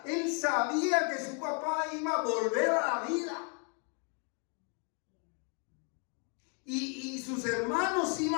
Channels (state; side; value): quieter; right; 38.3 dB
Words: Él sabía que su papá iba a volver a la vida. Y sus hermanos